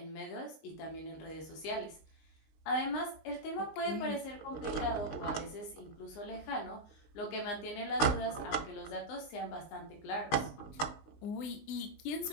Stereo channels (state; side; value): late; right; 19 ms